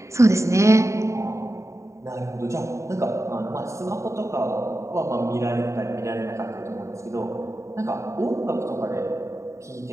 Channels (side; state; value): left; late; 0.14 ms